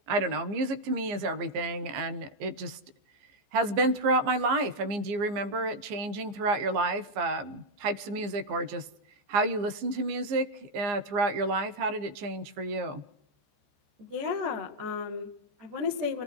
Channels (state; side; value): late; left; 15 ms